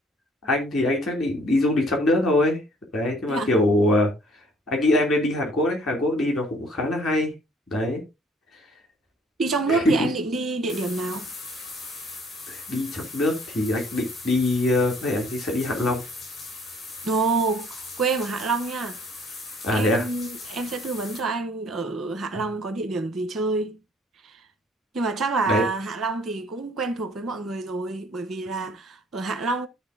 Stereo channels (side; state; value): both; normal; correlation 0.59